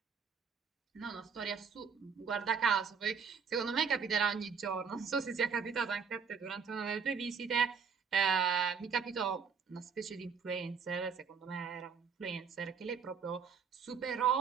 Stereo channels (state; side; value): quieter; left; 6.2 dB